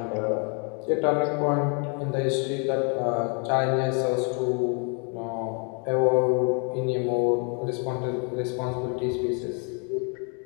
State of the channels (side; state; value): right; quieter; 38.0 dB